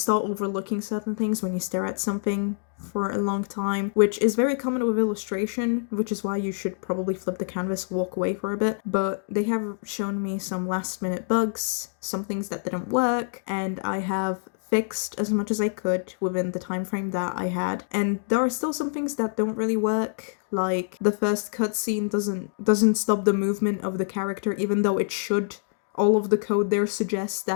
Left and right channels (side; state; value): right; silent; digital silence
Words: overlooking certain things when you stare at something for a long time, which is very common with illustration, which is why you should probably flip the canvas, walk away for a bit. But they have shown me some last minute bugs, some things that didn't work, and I have fixed as much as I could within the time frame that I had. And there are still some things that don't really work, like the first cutscene doesn't stop the movement of the character, even though it should. All of the code there suggests